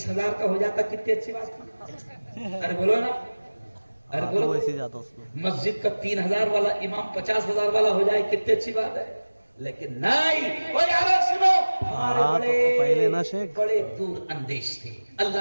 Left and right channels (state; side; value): inverted; both; correlation -1.00